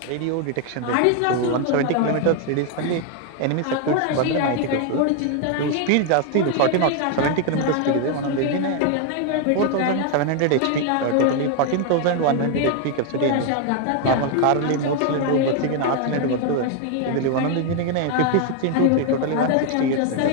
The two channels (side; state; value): both; different; correlation 0.01